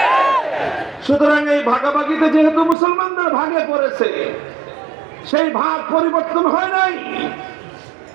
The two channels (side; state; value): left; drops out; at 2.8 s